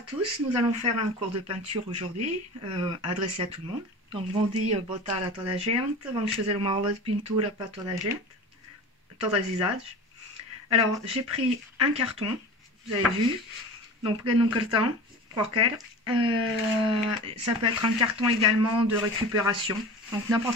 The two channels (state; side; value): normal; both; correlation 0.34